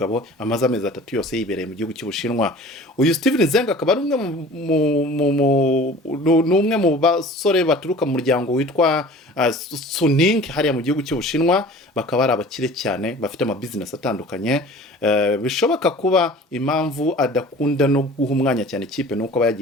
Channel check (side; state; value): both; normal; correlation 0.44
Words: amaze amezi 3 yose yibereye mu gihugu cy'Ubushinwa. Uyu Steven Zhang akaba ari umwe mu basore baturuka mu muryango witwa Suning hariya mu gihugu cy'Ubushinwa, bakaba ari abakire cyane bafite ama business atandukanye. Bishoboka kuba impamvu adakunda no guha umwanya cyane ikipe nuko aba